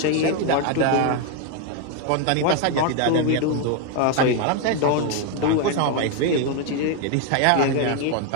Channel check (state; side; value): different; both; correlation 0.01